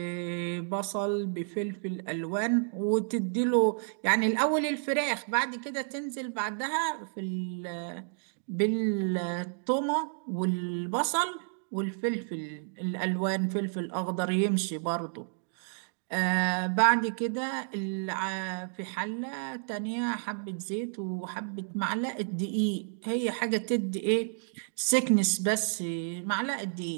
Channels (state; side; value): silent; left; digital silence